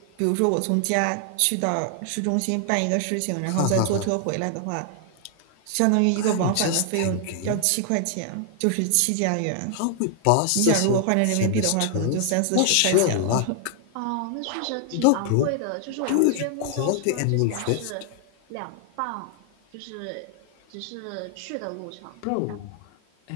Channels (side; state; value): both; different; correlation 0.00